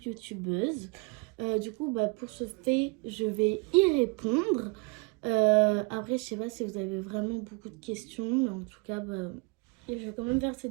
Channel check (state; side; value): quieter; left; 30.2 dB